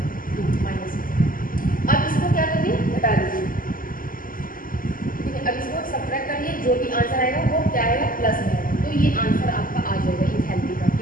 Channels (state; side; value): late; right; 0.41 ms